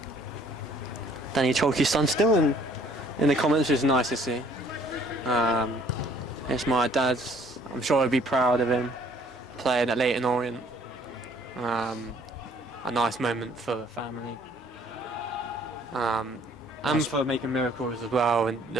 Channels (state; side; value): normal; both; correlation 0.60